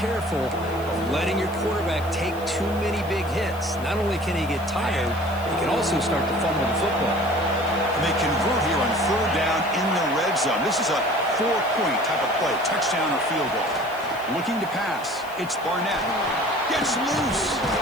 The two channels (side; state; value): left; noise; hiss, 21 dB below the sound